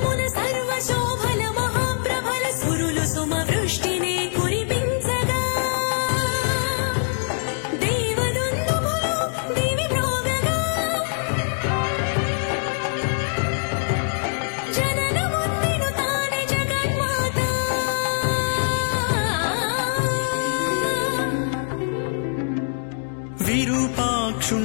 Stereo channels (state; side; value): silent; right; digital silence